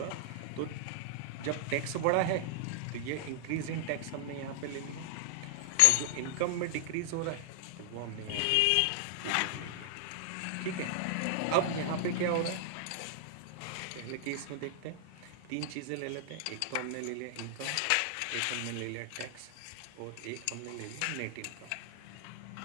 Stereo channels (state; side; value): different; both; correlation -0.01